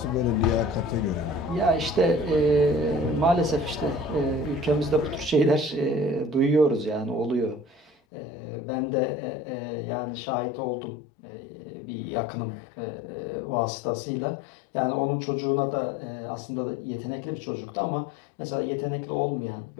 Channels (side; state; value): right; drops out; at 7.9 s